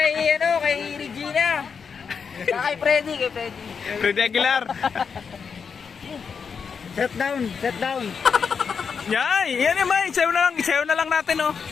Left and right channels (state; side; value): quieter; right; 6.1 dB